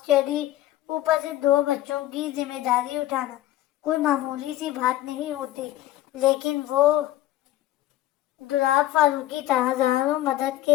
اوپر سے 2 بچوں کی ذمہ داری اٹھانا کوئی معمولی سی بات نہیں ہوتی، لیکن وہ دولاب فاروقی تھا، ہزاروں مدد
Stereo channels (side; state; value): right; quieter; 14.6 dB